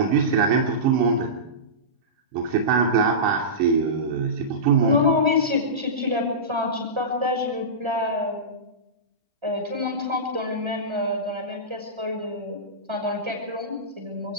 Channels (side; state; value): left; late; 1.3 ms